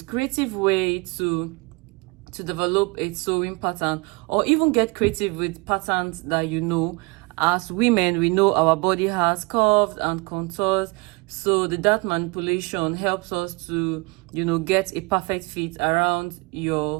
creative way to develop a sewing pattern, or even get creative with patterns that you know. As women, we know our body has curves and contours, so the dart manipulation helps us to get a perfect fit around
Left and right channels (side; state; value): left; quieter; 27.3 dB